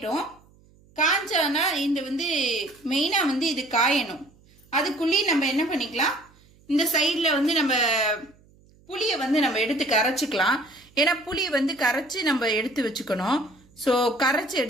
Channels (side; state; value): right; noise; hum, 29 dB below the sound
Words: காய்ச்சானா இந்த மெயினாக இது காயணும். அதுக்குள்ளேயே நம்ம என்ன பண்ணிக்கலாம், இந்த சைடில் நம்ம புளியை நம்ம எடுத்து கரைச்சிக்கலாம். ஏன்னா புளியை கரைச்சி நம்ம எடுத்து வச்சுக்கணும். ஸோ கரைச்சி